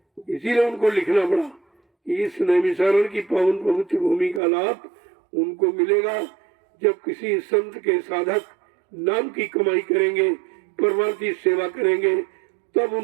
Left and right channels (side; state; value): left; drops out; at 4.4 s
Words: इसीलिए उनको लिखना पड़ा इस नैमिषारण की पावन पवित्र भूमि का लाभ उनको मिलेगा जब किसी संत के साधक नाम की कमाई करेंगे, परमार्थी सेवा करेंगे, तब